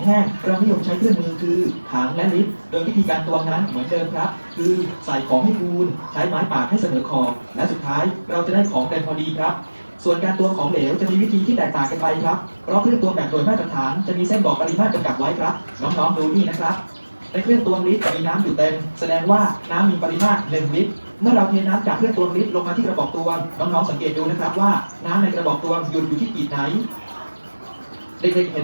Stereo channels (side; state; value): both; inverted; correlation -1.00